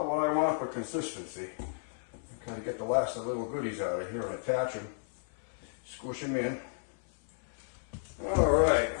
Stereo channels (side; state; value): right; silent; 56 dB below the other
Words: what I want for consistency. Kind of get the last of the little goodies out of here and attach them, squish them in. All right.